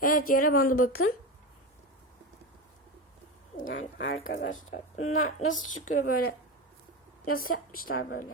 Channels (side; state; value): both; normal; correlation 0.21